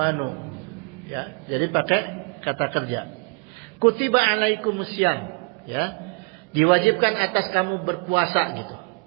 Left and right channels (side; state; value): left; quieter; 33.4 dB